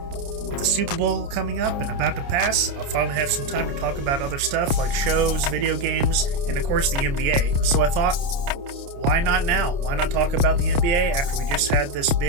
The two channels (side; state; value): left; late; 29 ms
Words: the Super Bowl coming up and about to pass, I'll finally have some time to talk about other stuff like shows, video games, and of course the NBA. So I thought, why not now? Why not talk about the NBA after we just had this